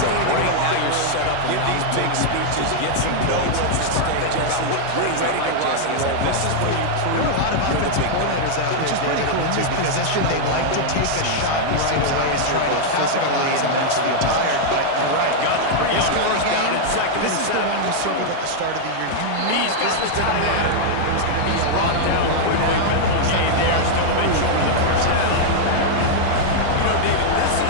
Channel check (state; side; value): different; both; correlation -0.01